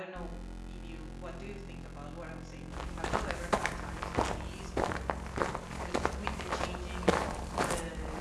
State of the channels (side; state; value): both; identical; correlation 1.00